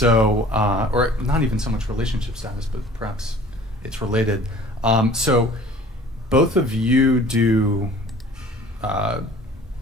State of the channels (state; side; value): normal; both; correlation 0.49